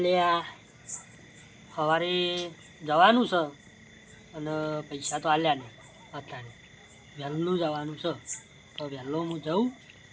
લે સવારે જવાનું છે અને પૈસા તો આલ્યા નહીં અત્યારે વહેલું જવાનું છે તો વહેલો હું જાઉં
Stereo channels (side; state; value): both; identical; correlation 1.00